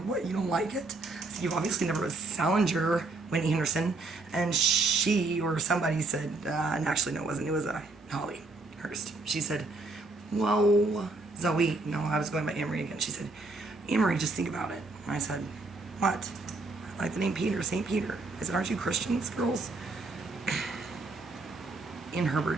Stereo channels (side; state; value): left; quieter; 3.3 dB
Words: what, you don't like it? I said, you obviously never read Salinger, Whitney Henderson. And she or somebody said, and actually no, it wasn't. It was Holly Hurst. She said, whoa, Zoe. No, I was going by Amory again. She said, Amory, just think about it. And I said, what? I like the name Peter, St. Peter. I said, aren't you Christians, girls? Ian